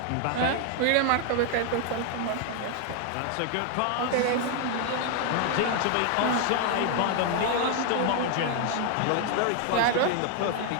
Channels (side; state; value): both; different; correlation 0.00